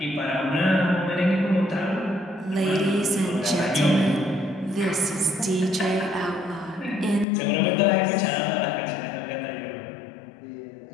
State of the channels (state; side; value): drops out; right; at 7.2 s